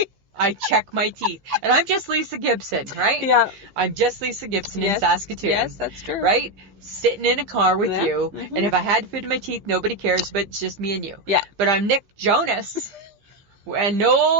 I check my teeth. And I'm just Lisa Gibson, right? Yeah. I'm just Lisa Gibson in Saskatoon. Yes, that's true. Right? Sitting in a car with you. Mm-hmm. And if I had food in my teeth, nobody cares, but it's just me and you. Yeah. But I'm Nick Jonas. And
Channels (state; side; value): late; left; 15 ms